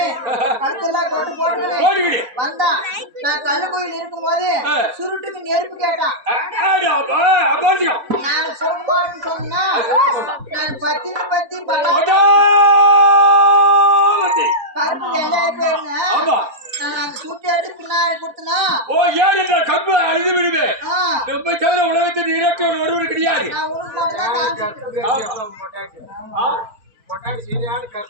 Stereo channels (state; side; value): late; left; 3.9 ms